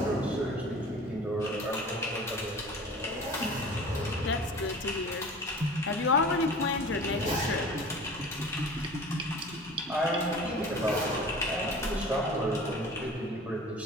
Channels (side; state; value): both; normal; correlation 0.41